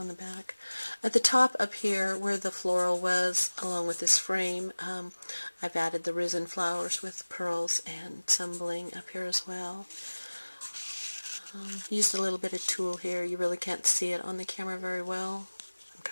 the back. At the top up here where the floral was along with this frame, I've added the resin flowers with pearls and some bling up here as well. Used a little bit of tulle here. You really can't see it on the camera very well. I'm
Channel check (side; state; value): both; inverted; correlation -1.00